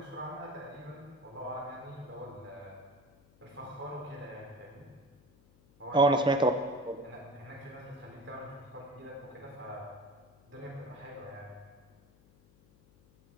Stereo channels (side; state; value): left; noise; hum, 27 dB below the sound